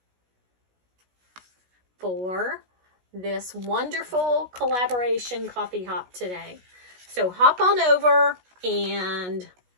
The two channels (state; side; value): late; left; 16 ms